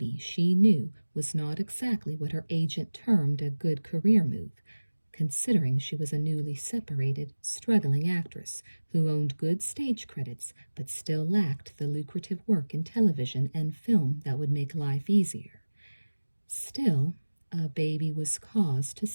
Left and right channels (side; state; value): both; inverted; correlation -1.00